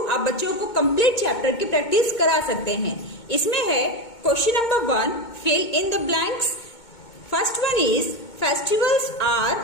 बच्चों को कंप्लीट चैप्टर की प्रैक्टिस करा सकते हैं। इसमें है question number 1, fill in the blanks. First one is festivals are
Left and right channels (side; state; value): right; late; 2.2 ms